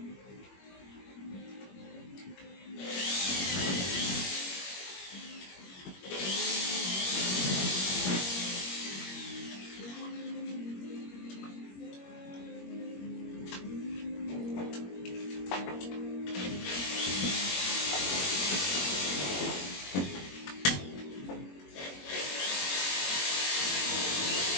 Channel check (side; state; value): right; late; 21 ms